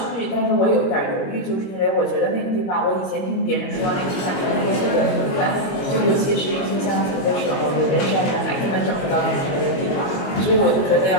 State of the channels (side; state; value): right; late; 22 ms